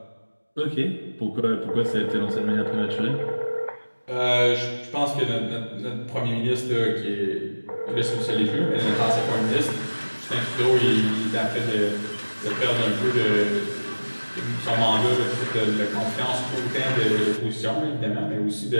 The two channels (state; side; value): inverted; both; correlation -1.00